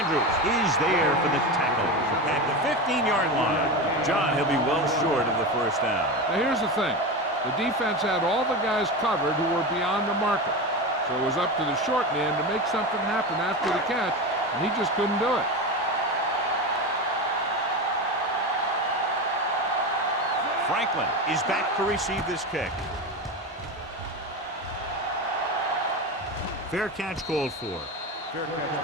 is there for the tackle at the 15-yard line. John, he'll be well short of the first down. Now here's the thing. The defense had all the guys covered who were beyond the marker. So it was up to the short man to make something happen after the catch, and he just couldn't do it. Franklin is back to receive this kick. Fair catch called for. Fair catch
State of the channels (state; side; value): normal; both; correlation 0.22